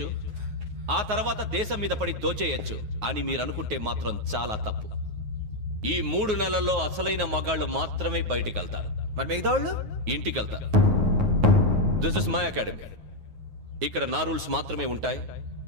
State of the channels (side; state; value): left; late; 9.4 ms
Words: ఆ తర్వాత దేశం మీద పడి దోచేయచ్చు అని మీరు అనుకుంటే మాత్రం చాలా తప్పు. ఈ 3 నెలల్లో అసలైన మగాళ్ళు మాత్రమే బయటికి వెళ్తారు. మరి మిగతా వాళ్ళు ఇంటికి వెళ్తారు. This is my academy. ఇక్కడ నా రూల్స్ మాత్రమే ఉంటాయి.